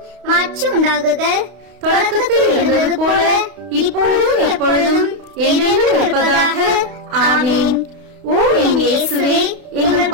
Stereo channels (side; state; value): left; late; 32 ms